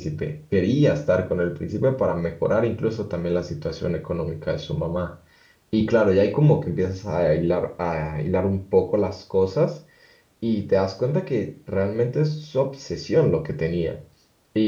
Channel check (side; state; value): both; identical; correlation 1.00